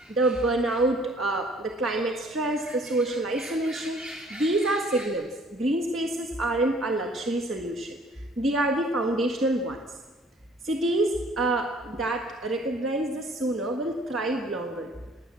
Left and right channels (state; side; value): normal; both; correlation 0.56